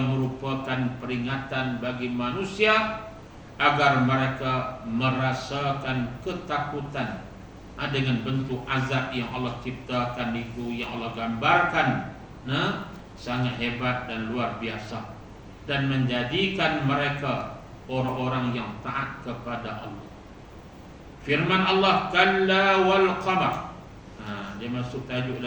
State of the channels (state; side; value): identical; both; correlation 1.00